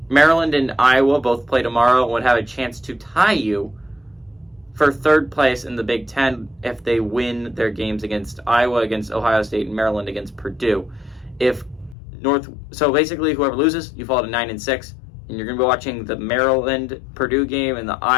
Maryland and Iowa both play tomorrow and would have a chance to tie you for third place in the Big Ten if they win their games against Iowa, against Ohio State, and Maryland against Purdue. So basically, whoever loses, you fall to 9-6, and you're going to be watching the Maryland-Purdue game and the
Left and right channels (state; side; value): drops out; right; at 12.0 s